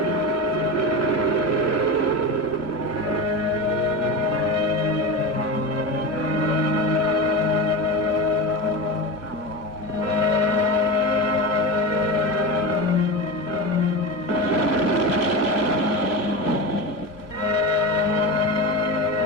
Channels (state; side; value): late; right; 1.1 ms